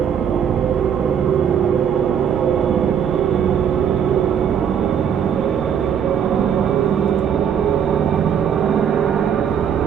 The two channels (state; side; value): quieter; left; 8.1 dB